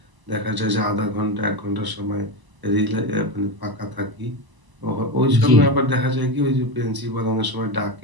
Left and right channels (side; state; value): left; late; 1.0 ms